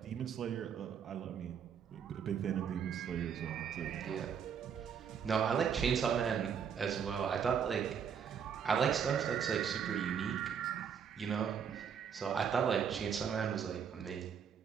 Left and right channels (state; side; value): quieter; left; 7.5 dB